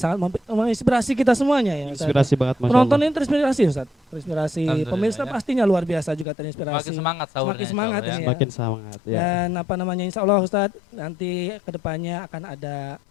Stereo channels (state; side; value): drops out; right; at 6.2 s